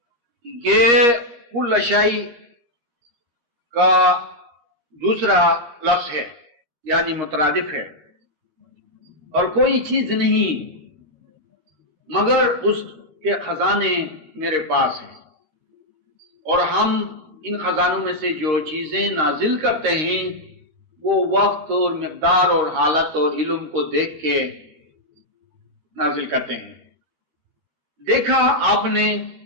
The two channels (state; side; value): late; left; 13 ms